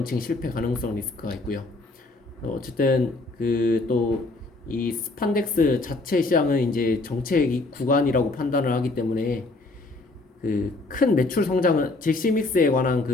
실패 가능성 리스크가 있고요. 어쨌든 그 또 이 스판덱스 자체 시장은 이제 정책 구간이라고 판단을 하기 때문에 그 큰 매출 성장은 잭스믹스에 관한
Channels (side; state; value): right; quieter; 3.1 dB